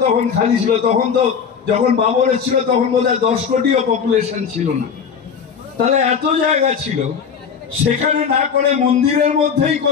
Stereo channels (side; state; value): right; quieter; 6.7 dB